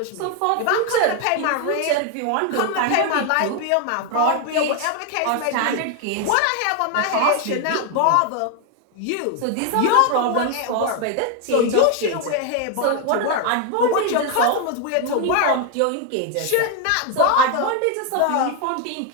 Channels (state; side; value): different; both; correlation 0.01